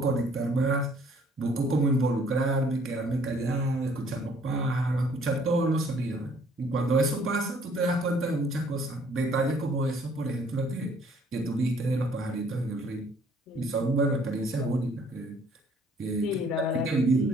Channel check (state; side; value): normal; both; correlation 0.60